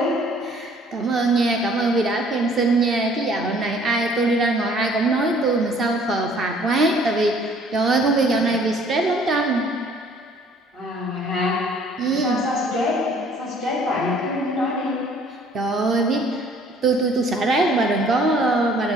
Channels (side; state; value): both; normal; correlation 0.57